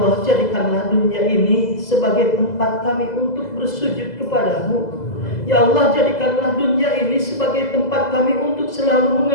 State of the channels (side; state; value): right; late; 2.0 ms